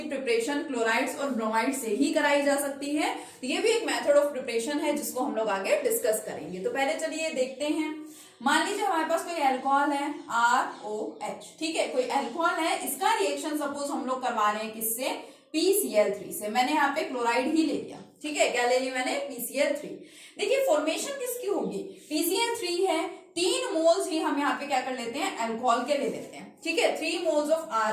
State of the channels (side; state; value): both; identical; correlation 1.00